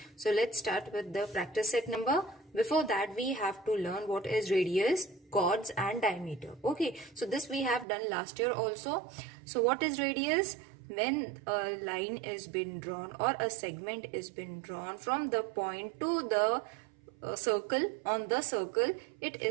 So let's start with the practice set number. Before that we have to learn what is radius, chords and diameter. Okay, so this we have done last year also. So what is radius? When a line is been drawn or a segment is been drawn from the point to the circle on the circle, it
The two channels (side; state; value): left; drops out; at 7.9 s